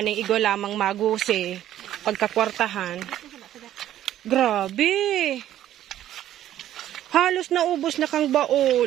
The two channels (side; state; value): left; quieter; 12.2 dB